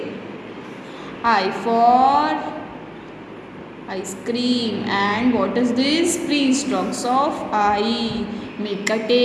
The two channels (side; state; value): both; identical; correlation 1.00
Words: I for ice cream. And what is this? Pre-stocks of I. Make a